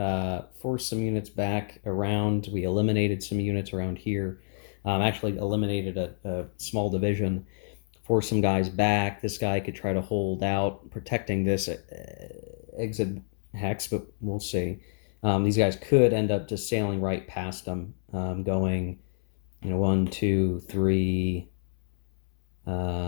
force some units back around. We eliminated some units around here. Actually eliminated a small division, forced some guys back. This guy could try to hold out, protecting this exit hex, but we'll see. These guys could end up just sailing right past them, going, 1, 2, 3,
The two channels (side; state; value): right; silent; 59 dB below the other